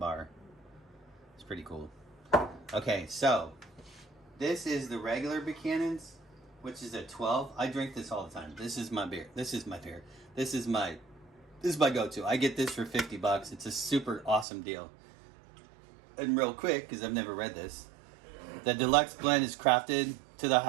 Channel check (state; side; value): drops out; left; at 14.5 s